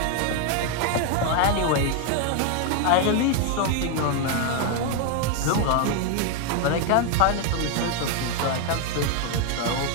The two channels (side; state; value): both; different; correlation 0.01